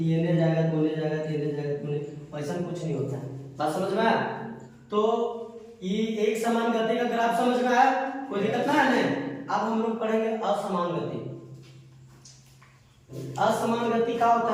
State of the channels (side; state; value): both; identical; correlation 1.00